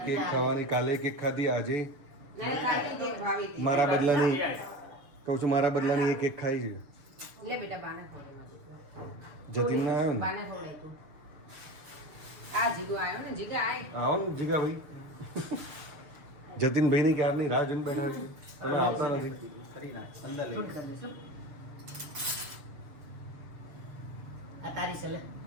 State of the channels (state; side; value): late; left; 6.7 ms